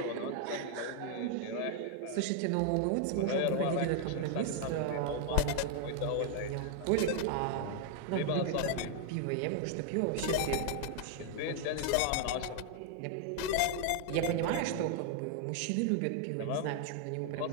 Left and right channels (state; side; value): different; both; correlation 0.00